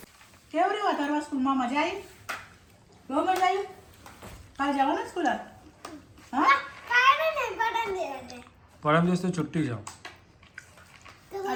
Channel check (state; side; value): identical; both; correlation 1.00